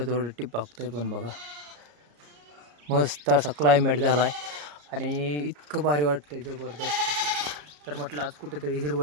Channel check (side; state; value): left; late; 34 ms